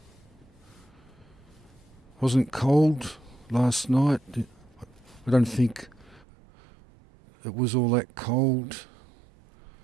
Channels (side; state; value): left; drops out; at 6.2 s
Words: Wasn't cold last night. I don't think it was all that cold.